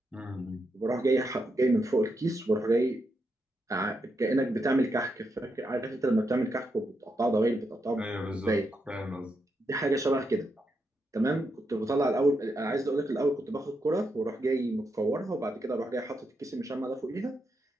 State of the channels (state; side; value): normal; both; correlation 0.83